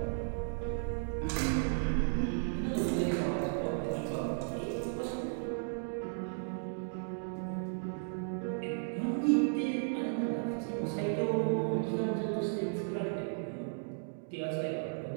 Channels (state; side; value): silent; left; digital silence